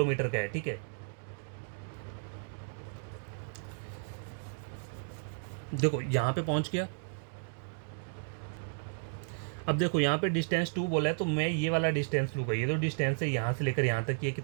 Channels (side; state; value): left; silent; digital silence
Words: का है, ठीक है। देखो यहाँ पे पहुँच गया। अब देखो यहाँ पे डिस्टेंस 2 बोला है, तो मैं ये वाला डिस्टेंस लूँगा, ये जो डिस्टेंस है यहाँ से लेकर यहाँ तक, ये